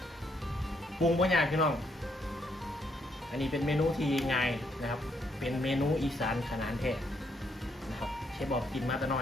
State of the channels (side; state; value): both; normal; correlation 0.74